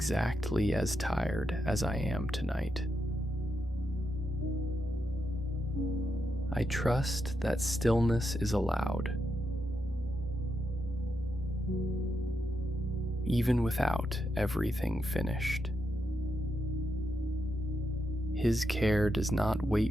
as tired as I am tonight. I trust that stillness is allowed, even without everything finished. His care does not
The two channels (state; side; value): normal; both; correlation 0.84